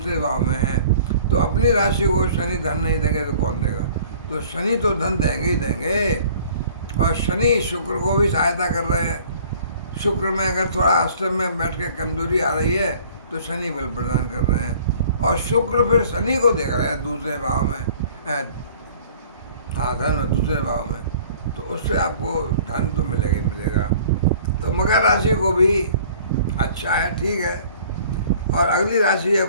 भाव में है। तो अपनी राशि को शनि धन नहीं देंगे तो कौन देगा? तो शनि तो धन देंगे ही देंगे। और शनि शुक्र को भी सहायता कर रहे हैं। शुक्र में अगर थोड़ा अष्टम में बैठ के कमजोरी आ रही है तो शनि बल प्रदान कर रहे हैं। और शुक्र फिर शनि को देख रहे हैं दूसरे भाव में, हाँ धन दूसरे भाव में, तो उससे आपको धन तो मिलेगा ही मिलेगा। तो मकर राशि को भी अच्छा है, ठीक है। और अगली राशि है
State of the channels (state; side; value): inverted; both; correlation -0.51